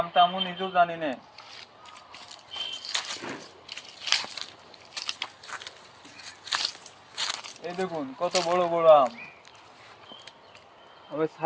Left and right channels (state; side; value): identical; both; correlation 1.00